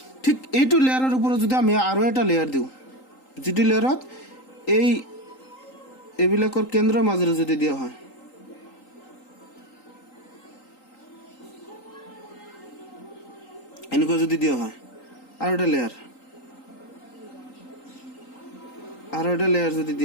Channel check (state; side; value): late; right; 3.8 ms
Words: ঠিক এইটো লেয়াৰৰ ওপৰত যদি আমি আৰু এটা লেয়াৰ দিওঁ, যিটো লেয়াৰত এইবিলাকৰ কেন্দ্ৰৰ মাজেৰে যদি দিয়া হয়, এনেকুৱা যদি দিয়া হয় আৰু এটা লেয়াৰ যদি